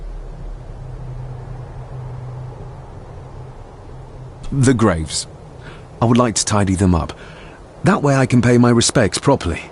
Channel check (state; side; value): identical; both; correlation 1.00